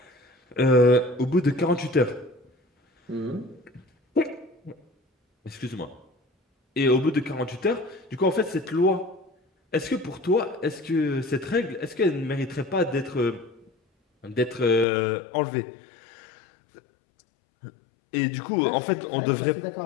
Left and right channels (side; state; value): right; drops out; at 14.9 s